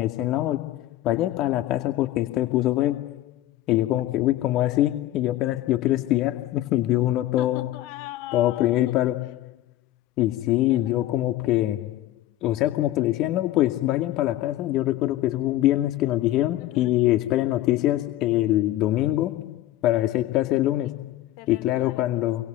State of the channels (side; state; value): right; quieter; 14.5 dB